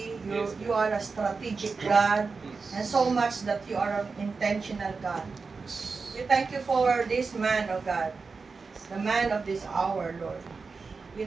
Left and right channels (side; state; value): left; quieter; 4.6 dB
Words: You are a strategic God, and so much that you are an intentional God. We thank you for this man, oh God, the man of this hour, Lord. We